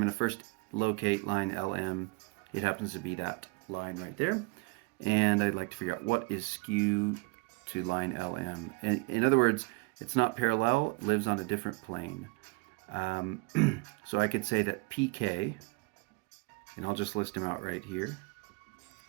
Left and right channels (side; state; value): left; quieter; 27.3 dB